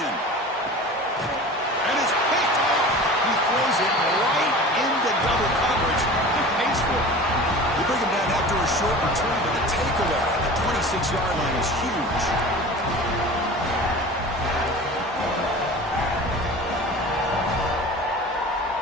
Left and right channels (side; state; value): both; normal; correlation 0.38